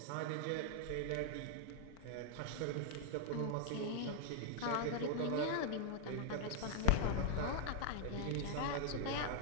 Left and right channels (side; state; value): both; different; correlation 0.00